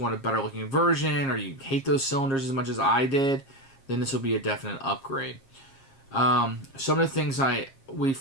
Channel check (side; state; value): right; late; 7.4 ms